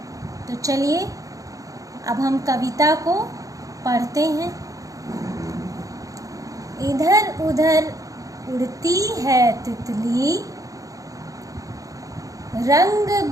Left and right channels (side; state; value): left; late; 0.17 ms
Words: तो चलिए अब हम कविता को पढ़ते हैं। इधर उधर उड़ती है तितली, रंग